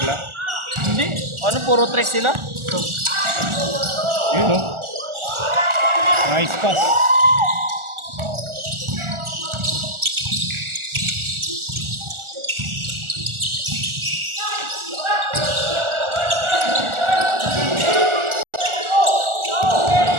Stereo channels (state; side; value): late; left; 1.4 ms